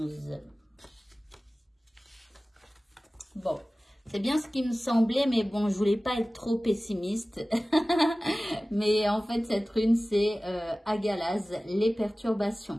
Bon, c'est bien ce qui me semblait, mais bon, je voulais pas être trop pessimiste. Mais en fait, cette rune, c'est Agalaz, les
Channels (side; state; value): both; normal; correlation 0.97